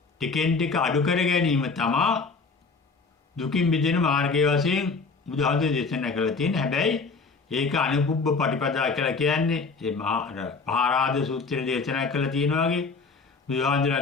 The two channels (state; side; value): quieter; right; 4.4 dB